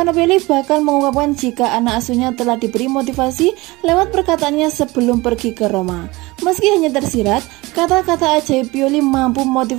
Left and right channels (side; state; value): left; quieter; 21.9 dB